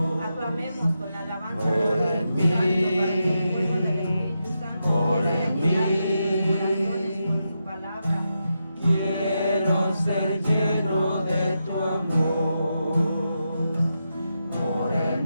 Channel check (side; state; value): both; inverted; correlation -0.86